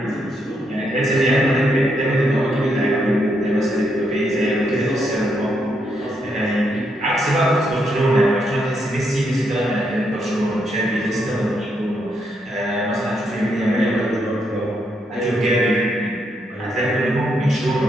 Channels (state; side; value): normal; both; correlation 0.78